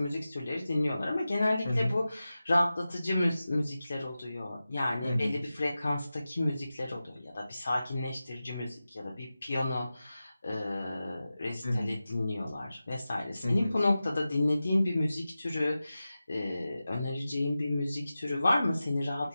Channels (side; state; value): both; inverted; correlation -0.94